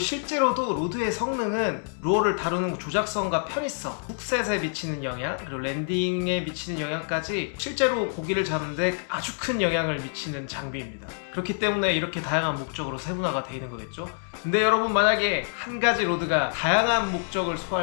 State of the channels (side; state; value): right; silent; 60 dB below the other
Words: 로드의 성능은 루어를 다루는 조작성과 편의성, 훅셋에 미치는 영향, 그리고 랜딩에 미치는 영향까지 실제로 고기를 잡는데 아주 큰 영향을 미치는 장비입니다. 그렇기 때문에 이렇게 다양한 목적으로 세분화가 되어 있는 거겠죠. 근데 여러분, 만약에 한 가지 로드가 다양한 목적을